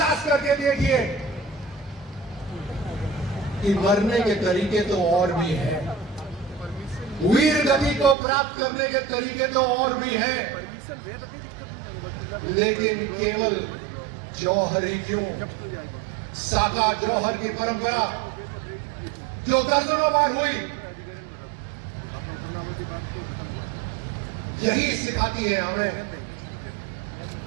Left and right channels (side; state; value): left; drops out; at 8.2 s